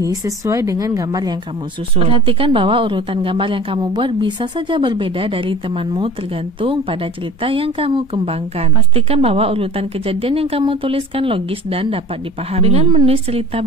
sesuai dengan gambar yang kamu susun. Perhatikan bahwa urutan gambar yang kamu buat bisa saja berbeda dari temanmu tergantung pada cerita yang kamu kembangkan. Pastikan bahwa urutan kejadian yang kamu tuliskan logis dan dapat dipahami. Dengan menulis cerita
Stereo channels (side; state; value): both; normal; correlation 0.41